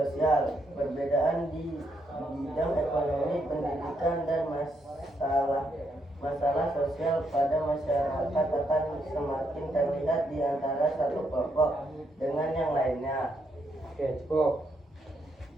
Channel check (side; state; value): both; normal; correlation 0.77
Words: Perbedaan di bidang ekonomi, pendidikan, dan masalah sosial pada masyarakat akan semakin terlihat di antara satu kelompok dengan yang lainnya. Oke, cukup.